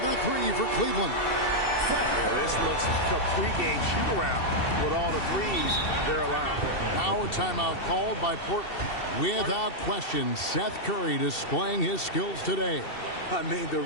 3 for Cleveland. Yeah, this looks like a pregame shoot-around with all the threes they're allowing. Now a timeout called by Portland. Without question, Seth Curry displaying his skills today. I mean, the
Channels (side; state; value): right; late; 2.7 ms